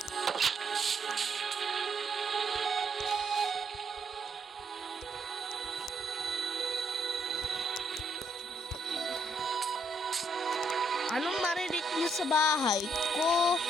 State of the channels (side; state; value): both; normal; correlation 0.73